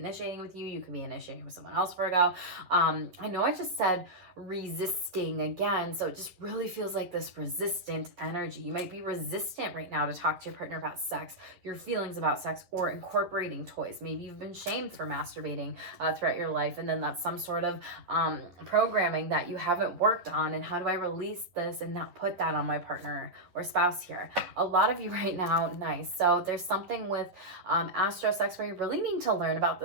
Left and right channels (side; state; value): left; late; 11 ms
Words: with you. You could be initiating with someone else, Virgo. I know I just said resisting again, so it just really feels like this resistant energy. You might be resistant right now to talk to your partner about sex, your feelings about sex, or incorporating toys. Maybe you've been shamed for masturbating throughout your life, and then that's some sort of programming that you haven't worked on. And how do I release this and not put that on my partner or spouse here? A lot of you right now, nice. So there's something with astro sex where you really need to learn about